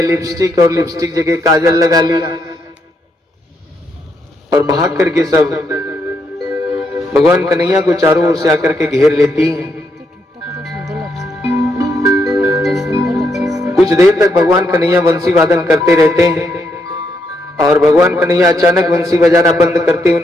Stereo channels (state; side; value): normal; both; correlation 0.78